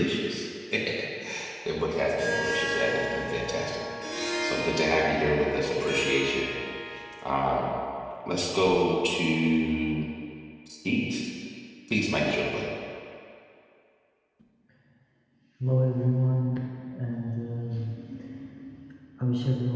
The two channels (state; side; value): identical; both; correlation 1.00